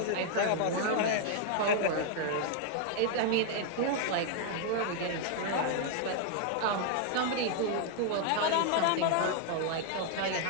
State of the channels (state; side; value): different; both; correlation 0.00